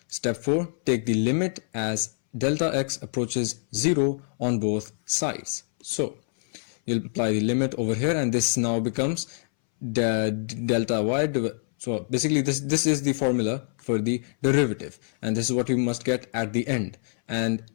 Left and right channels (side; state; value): right; silent; 61 dB below the other